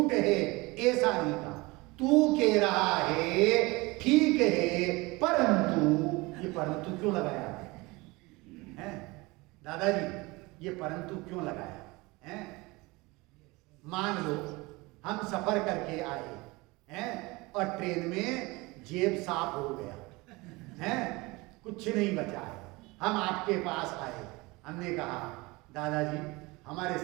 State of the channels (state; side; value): quieter; left; 23.4 dB